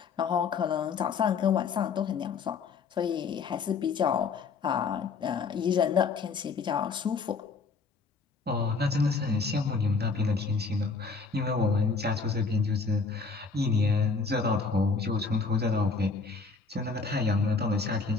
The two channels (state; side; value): quieter; right; 4.8 dB